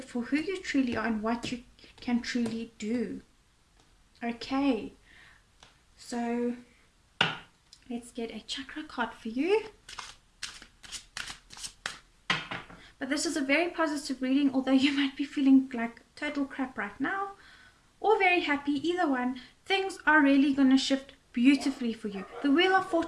for who you truly are and what you can truly do. Okay, so let's get a chakra card for you. But this is a very positive reading, although you might be feeling like total crap right now, or very happy. Either one, things are really going to shift beautifully for you. The Wheel of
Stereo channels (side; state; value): both; identical; correlation 1.00